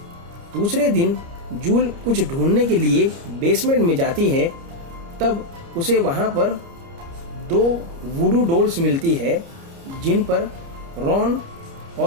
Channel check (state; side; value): late; left; 29 ms